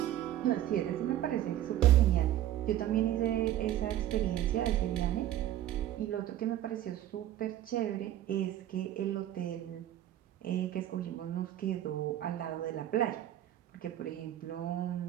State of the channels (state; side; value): quieter; left; 12.5 dB